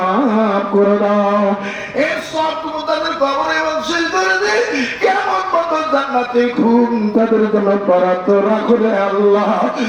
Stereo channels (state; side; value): identical; both; correlation 1.00